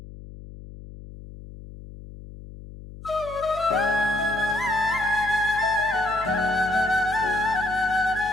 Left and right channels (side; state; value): left; noise; hum, 15 dB below the sound